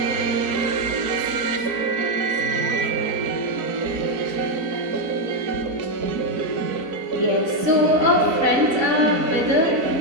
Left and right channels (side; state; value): left; late; 4.0 ms